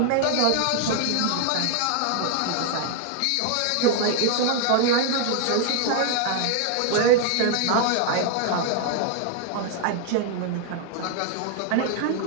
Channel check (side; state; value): both; different; correlation 0.00